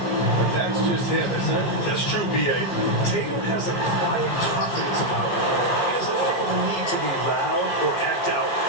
But that's just him, isn't it? That's true, B.A. Tatum has a quiet confidence about him. He doesn't feel the need to be loud or act out.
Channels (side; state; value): right; late; 15 ms